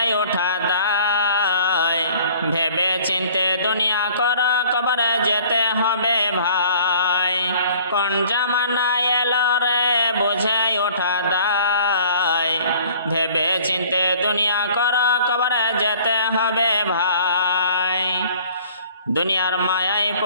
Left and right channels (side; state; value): both; inverted; correlation -0.51